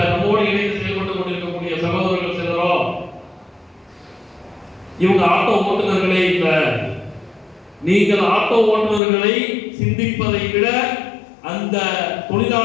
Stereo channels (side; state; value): right; drops out; at 9.0 s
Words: நம்மோடு இணைந்து செயல்பட்டு கொண்டிருக்கக்கூடிய சகோதரர்கள் சிலரோ இவங்க ஆட்டோ ஓட்டுநர்களே இல்ல, நீங்கள் ஆட்டோ ஓட்டுநர்களை சிந்திப்பதை விட அந்த